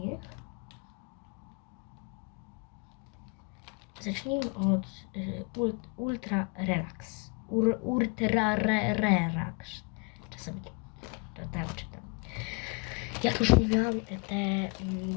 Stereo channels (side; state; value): right; quieter; 32.5 dB